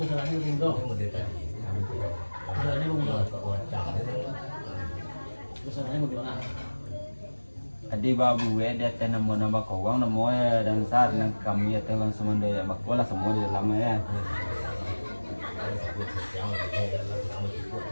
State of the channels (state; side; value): inverted; both; correlation -1.00